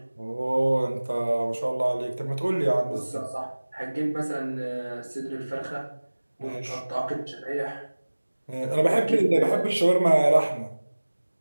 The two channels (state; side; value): inverted; both; correlation -1.00